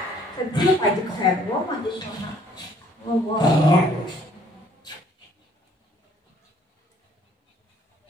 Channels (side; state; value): both; normal; correlation 0.61